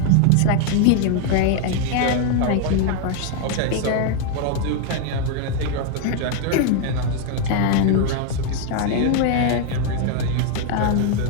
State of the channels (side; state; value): both; different; correlation 0.00